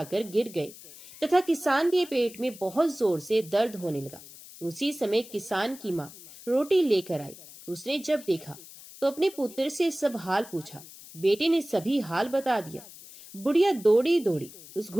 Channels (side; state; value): left; noise; hiss, 18 dB below the sound